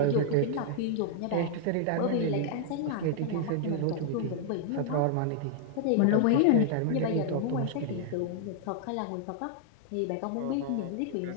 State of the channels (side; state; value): both; different; correlation -0.01